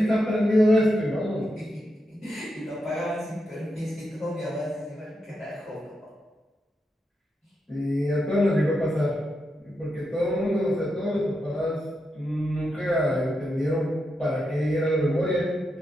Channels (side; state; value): both; normal; correlation 0.85